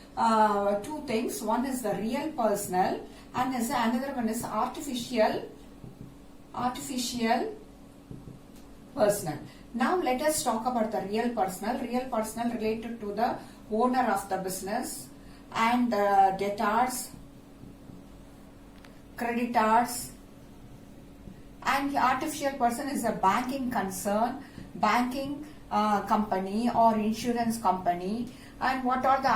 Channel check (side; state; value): both; identical; correlation 1.00